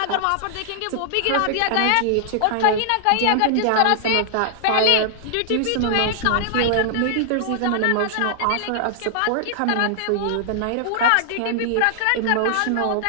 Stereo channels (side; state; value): both; different; correlation -0.01